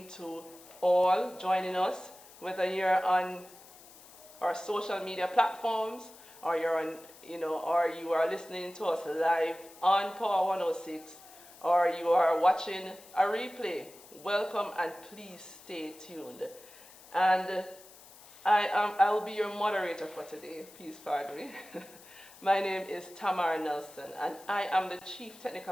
to all joining us, whether you're on our social media platforms or you're on, or you are listening to us live on Power 106, or you are watching a replay. Welcome and please stay tuned. And I will be your moderator for today. Please pardon me. My name is Tamara Nelson, and I am the Chief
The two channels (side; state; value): left; noise; hiss, 21 dB below the sound